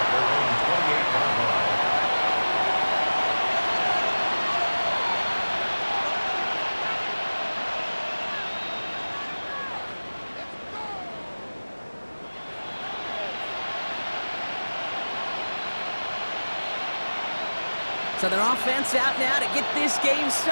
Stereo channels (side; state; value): both; inverted; correlation -1.00